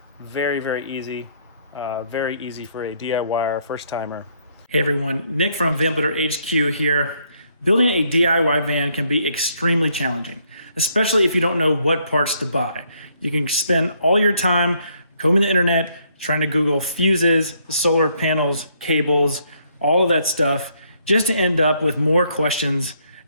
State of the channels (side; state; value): both; inverted; correlation -0.70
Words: Very, very easy. Very easy for a DIYer, first timer. Hey everyone, Nick from VanMade HQ here. Building a DIY van can be extremely challenging, especially if you don't know what parts to buy. You can spend all your time combing the internet, trying to Google fuses, solar panels, cables, all of that stuff, just to end up with more questions